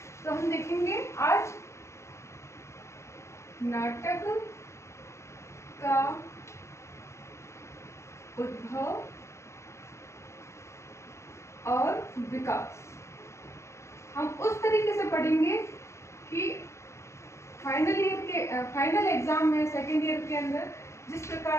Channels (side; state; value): right; late; 0.14 ms